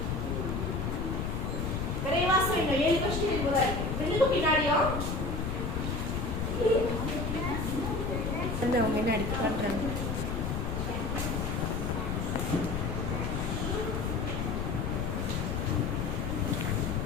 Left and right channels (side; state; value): left; noise; rumble, 1 dB below the sound